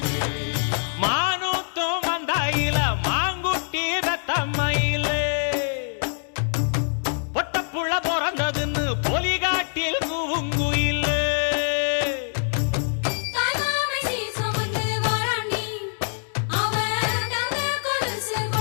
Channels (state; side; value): silent; right; digital silence